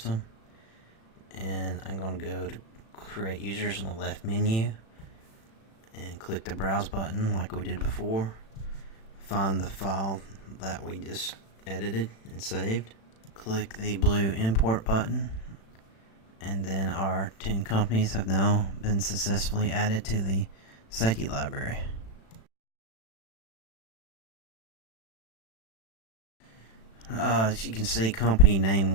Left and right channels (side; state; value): right; late; 36 ms